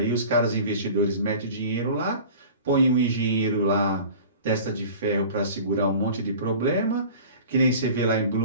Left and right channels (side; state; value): both; inverted; correlation -0.41